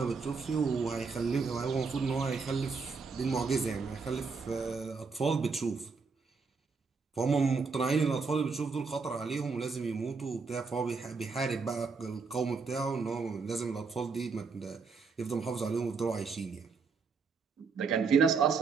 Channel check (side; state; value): left; quieter; 4.8 dB